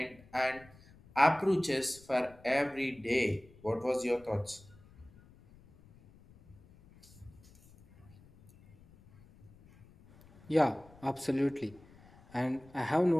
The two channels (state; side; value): noise; left; rumble, 25 dB below the sound